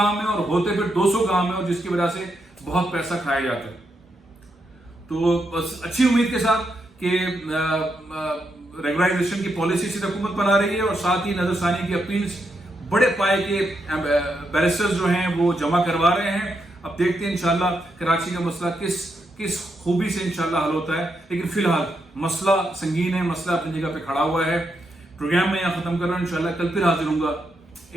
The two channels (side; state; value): both; normal; correlation 0.82